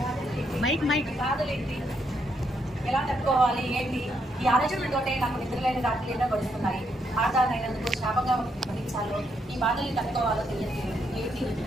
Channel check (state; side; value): normal; both; correlation 0.77